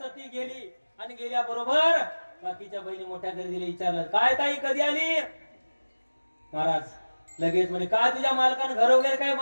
गेली आणि गेल्या बरोबर बाकीच्या बहिणी मोठ्या घरी दिले. विचारलं काय ताई कधी आली? महाराज लगेच म्हणे काय तुझ्या मालकानं घर वगैरे काय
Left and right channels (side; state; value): both; inverted; correlation -1.00